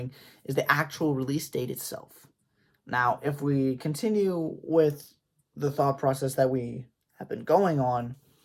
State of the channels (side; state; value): both; identical; correlation 1.00